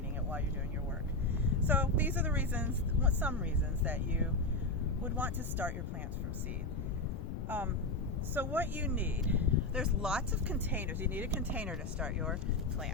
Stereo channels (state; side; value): noise; left; rumble, 5 dB below the sound